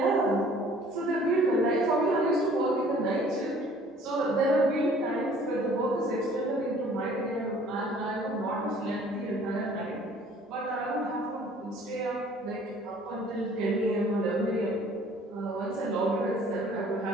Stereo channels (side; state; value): both; normal; correlation 0.54